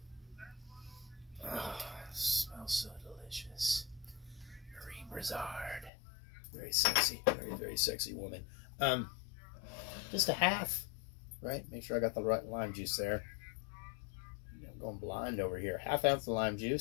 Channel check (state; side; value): drops out; right; at 5.9 s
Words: Brizard. Very sexy. Very, very sexy woman. Just a half, right? Make sure I got the right lime juice there. I'm going blind over here. 1/2 ounce of lime